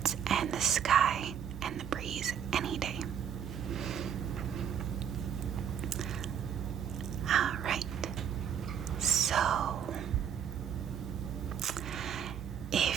and the sky and the breeze any day. Alright, so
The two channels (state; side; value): quieter; left; 8.5 dB